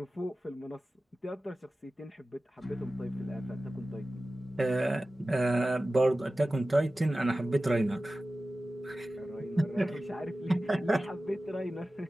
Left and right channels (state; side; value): normal; both; correlation 0.95